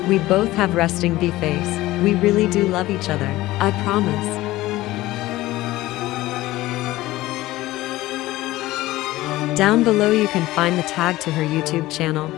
we both have resting bee face. We really do love each other, I promise. Down below you can find the tag to her YouTube channel.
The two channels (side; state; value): right; quieter; 17.4 dB